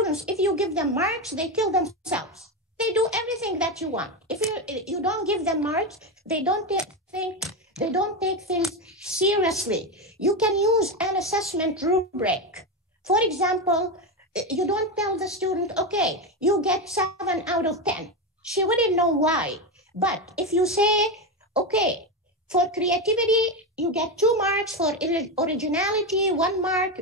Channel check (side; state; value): both; normal; correlation 0.14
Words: if you give them marks, they kill themselves. They do everything that you want. If you don't give them marks, they don't take things seriously. You can use an assessment rubric. For example, you don't tell the student, okay, you get 7 out of 10. She wouldn't know why. But if you say, okay, for creativity, you get 2 marks, for originality, 1 mark,